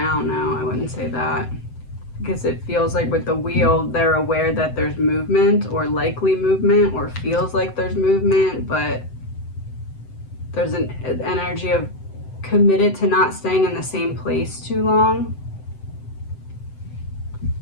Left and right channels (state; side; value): late; right; 7.9 ms